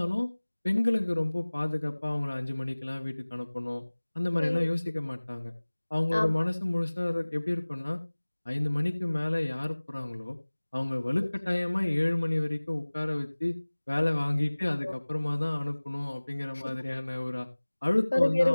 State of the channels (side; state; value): both; inverted; correlation -1.00